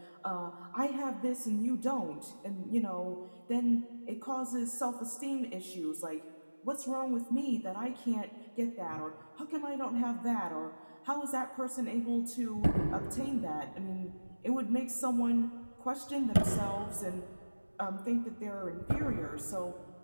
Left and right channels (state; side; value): inverted; both; correlation -1.00